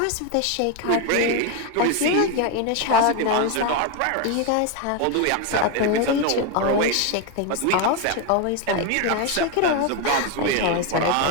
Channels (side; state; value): both; different; correlation 0.01